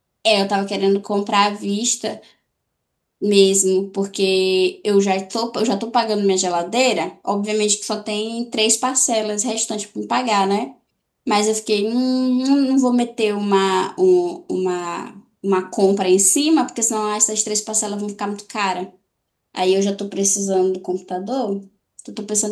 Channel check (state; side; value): identical; both; correlation 1.00